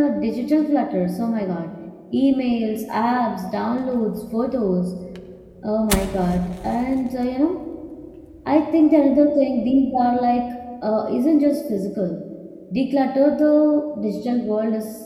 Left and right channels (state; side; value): identical; both; correlation 1.00